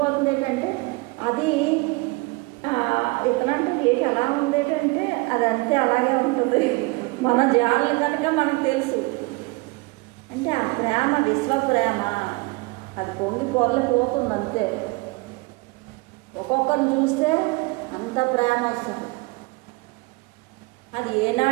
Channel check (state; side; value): quieter; left; 25.3 dB